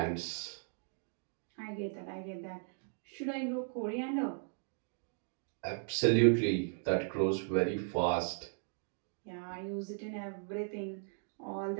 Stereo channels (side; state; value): left; silent; 53 dB below the other